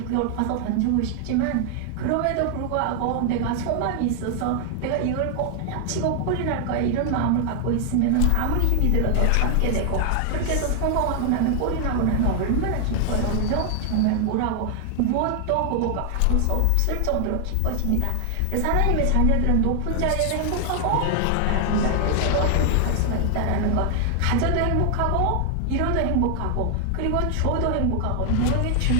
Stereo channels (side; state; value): both; different; correlation 0.00